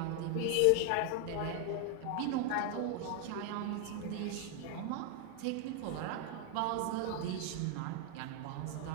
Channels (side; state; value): both; different; correlation 0.00